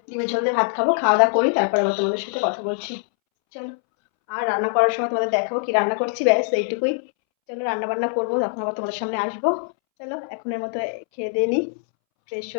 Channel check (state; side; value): silent; right; 64 dB below the other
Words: ডিমের ঝোল দিয়ে ভাত খাবো, খাওয়া দাওয়া করি, তারপর আবার তোমাদের সাথে কথা বলছি। চলো, আর রান্না করার সময় তোমাদের দেখাবো কি রান্না করছি, ব্যাস এইটুকুই। চলো রান্না বান্না করবো, তখন আবার তোমাদের সামনে আসবো। চলো এখনের মতো খেয়ে দিয়ে নিই, ফ্রেশ